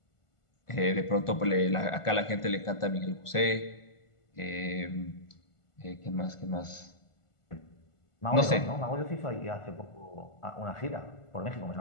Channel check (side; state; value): right; late; 1.5 ms